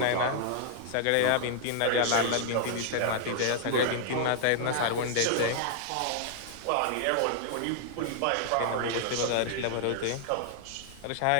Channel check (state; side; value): different; both; correlation -0.01